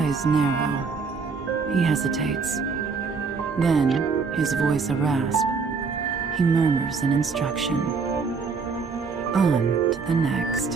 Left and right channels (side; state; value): left; quieter; 5.0 dB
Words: narrow. He hesitates. Then, his voice a rasp, he murmurs an instruction. On to the